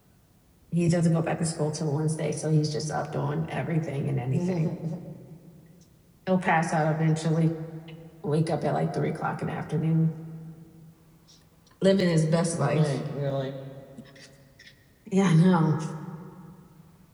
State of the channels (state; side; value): identical; both; correlation 1.00